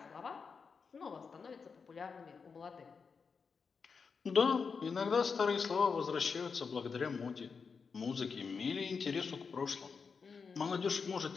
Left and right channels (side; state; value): right; quieter; 5.4 dB